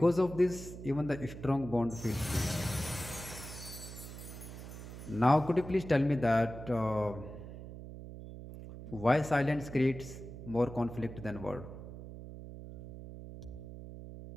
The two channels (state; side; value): noise; right; hum, 12 dB below the sound